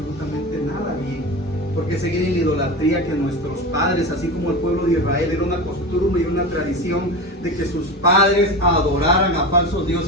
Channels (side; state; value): both; normal; correlation 0.26